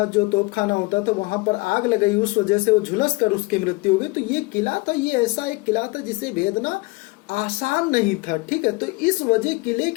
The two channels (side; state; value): right; quieter; 25.1 dB